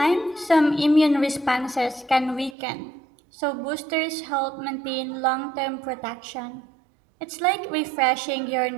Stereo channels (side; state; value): left; drops out; at 2.6 s